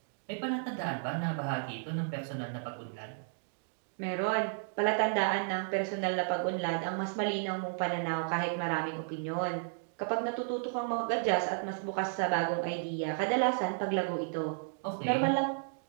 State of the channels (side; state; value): left; silent; digital silence